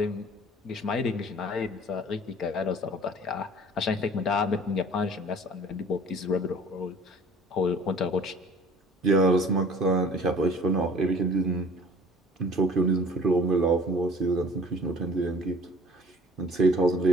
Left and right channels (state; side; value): normal; both; correlation 0.49